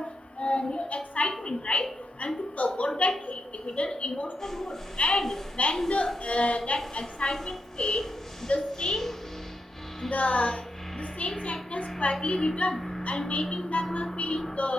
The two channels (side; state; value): both; normal; correlation 0.84